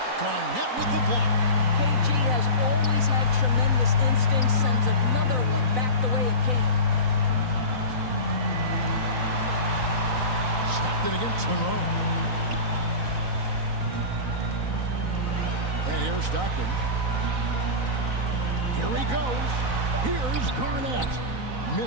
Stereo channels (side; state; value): left; late; 4.0 ms